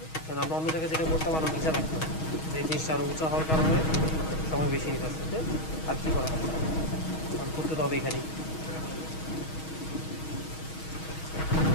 কারণ আমরা অন্য জায়গায় যেটা করতে পারবো নিচে রাখতাম, এই জিনিসটা আরো উঁচা হওয়ার কারণে সময় বেশি নিতে আসছে। আর কি করা হবে, করতে তো হবে এখানেই।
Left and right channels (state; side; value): late; right; 6.3 ms